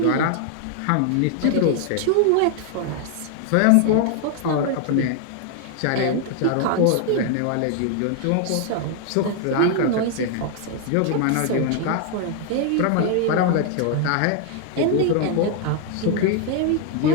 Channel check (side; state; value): both; different; correlation 0.00